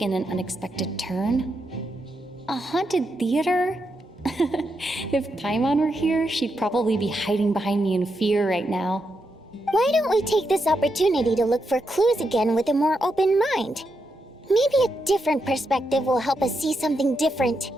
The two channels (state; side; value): normal; both; correlation 0.83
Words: an unexpected turn. A haunted theater? If Paimon were here, she'd probably be hiding behind me in fear right now. Why don't we take this opportunity to look for clues again with a more open mind? Maybe a different perspective will help us see something different.